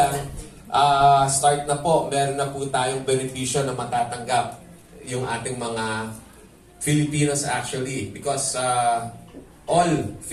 start na po, meron na po tayong benepisyo na matatanggap yung ating mga Filipinos actually. Because all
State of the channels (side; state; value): both; identical; correlation 1.00